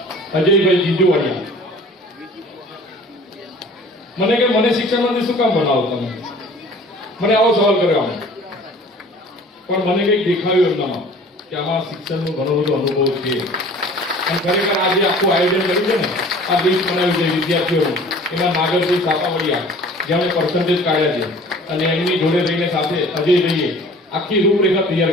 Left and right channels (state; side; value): normal; both; correlation 0.48